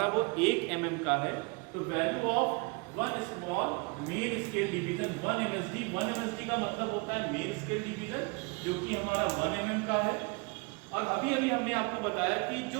वो 1 mm का है। तो value of one small main scale division 1 MSD का मतलब होता है मेन स्केल डिवीजन, जो कि हमारा 1 mm का है। और अभी हमने आपको बताया कि जो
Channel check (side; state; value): left; quieter; 30.8 dB